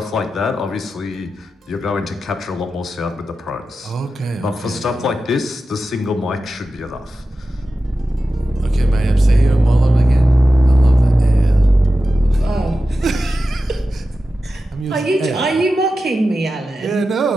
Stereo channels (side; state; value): both; normal; correlation 0.92